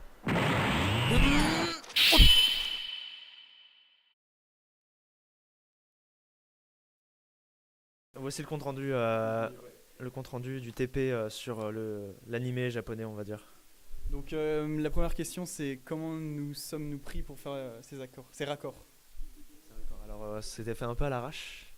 Voici le compte rendu du TP sur l'animé japonais, on va dire. Donc la première question, c'est comment nous sommes-nous pris pour faire ces raccords. Alors c'était fait un peu à l'arrache,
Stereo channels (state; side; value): identical; both; correlation 1.00